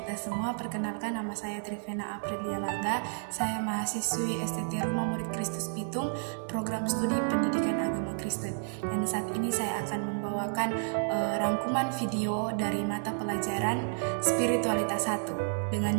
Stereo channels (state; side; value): silent; left; digital silence